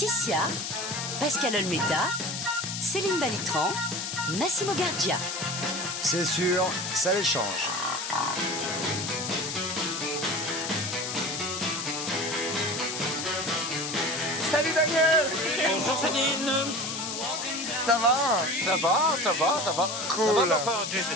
Pascal Olmeta, Céline Balitran, Massimo Gardia. C'est sûr, ça les change. Salut Daniel! Bonjour Céline. Ça va? Ça va, ça va, ça va. Cool. Ça va, mais enfin, tu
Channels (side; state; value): left; noise; hiss, 4 dB below the sound